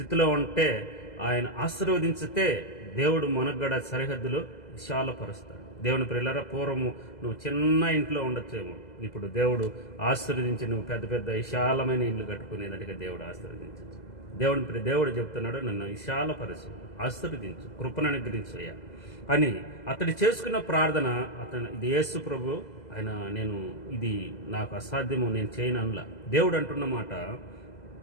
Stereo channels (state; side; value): late; right; 2.0 ms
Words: ఉంటే ఆయన ఆశీర్వదించితే దేవుడు మనకు కూడా సరిహద్దులు విశాలపరుస్తాడు. దేవుని ప్రియులారా, పూర్వము నువ్వు చిన్న ఇంట్లో ఉండొచ్చేమో, ఇప్పుడు దేవుడు ఆశీర్వదించి నువ్వు పెద్ద పెద్ద విశాలమైన ఇల్లు కట్టుకునేదానికి దేవుడు ఆశీర్వదించచ్చు. దేవుడు చెప్తున్నాడు, నన్ను విశాలపరచు, ఆశీర్వదించు, కృపను అనుగ్రహించయ్యా అని అతడు చేసుకున్న ప్రార్థన. ఇది యేసు ప్రభు ఆయన, నేను ఇది నాకు అసాధ్యము, నేను చేయను అనలా. దేవుడు అంటున్న మాట,